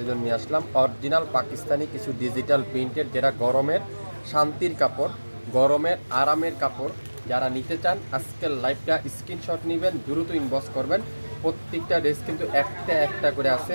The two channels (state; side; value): inverted; both; correlation -1.00